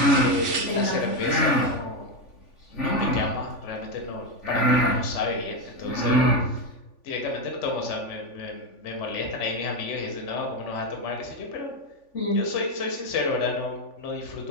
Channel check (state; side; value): late; right; 3.5 ms